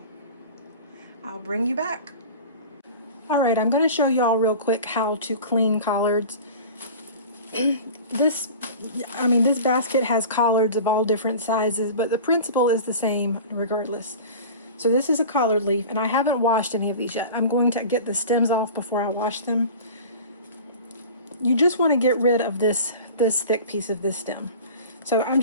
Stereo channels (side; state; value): both; inverted; correlation -0.37